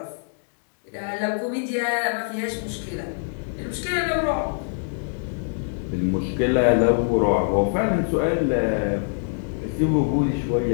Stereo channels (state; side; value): silent; right; digital silence